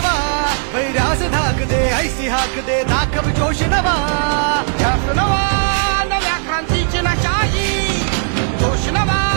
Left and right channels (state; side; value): silent; left; digital silence